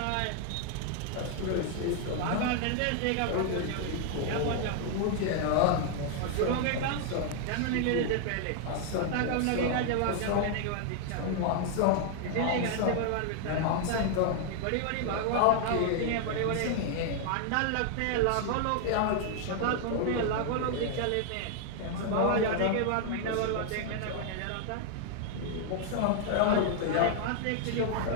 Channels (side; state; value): both; different; correlation 0.00